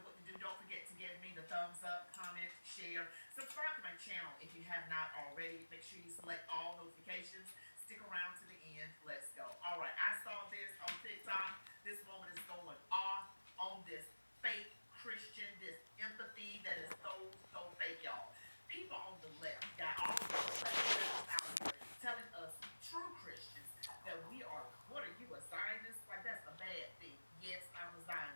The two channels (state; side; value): inverted; both; correlation -1.00